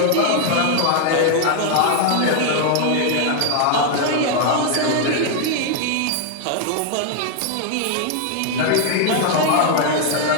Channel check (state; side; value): different; both; correlation 0.00